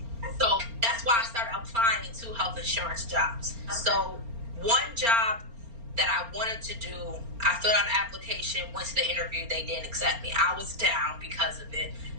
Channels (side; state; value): left; late; 4.3 ms